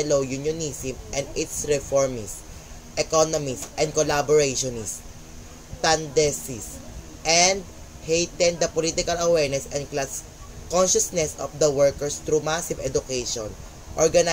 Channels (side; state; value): both; identical; correlation 1.00